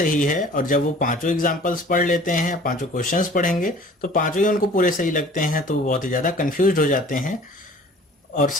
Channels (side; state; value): both; normal; correlation 0.49